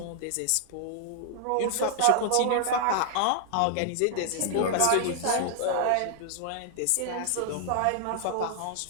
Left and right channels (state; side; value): different; both; correlation 0.00